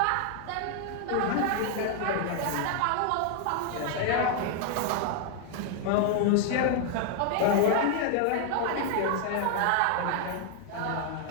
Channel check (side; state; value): both; different; correlation 0.00